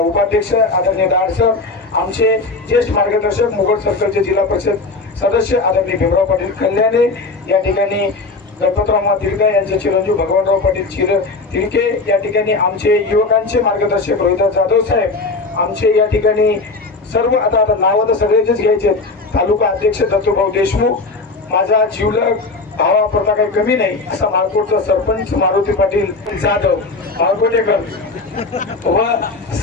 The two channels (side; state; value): right; quieter; 3.6 dB